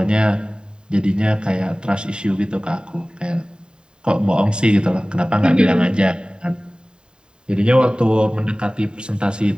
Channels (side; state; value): left; late; 0.049 ms